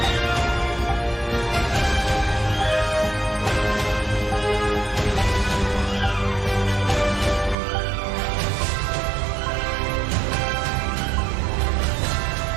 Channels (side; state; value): left; drops out; at 7.6 s